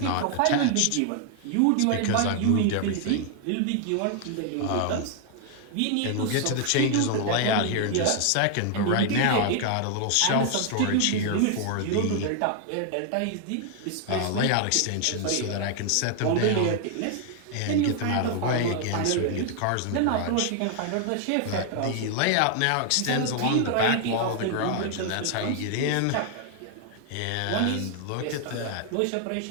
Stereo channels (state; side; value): different; both; correlation 0.00